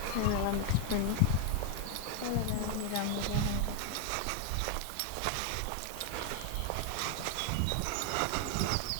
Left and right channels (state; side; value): different; both; correlation 0.00